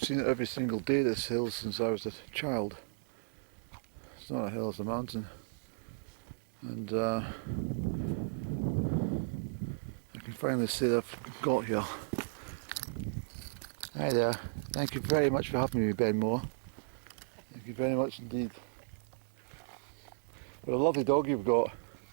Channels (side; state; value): left; silent; digital silence